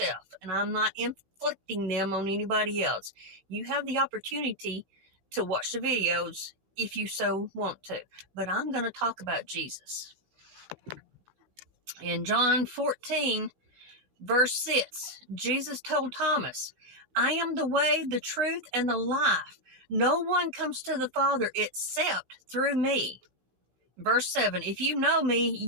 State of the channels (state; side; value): late; left; 16 ms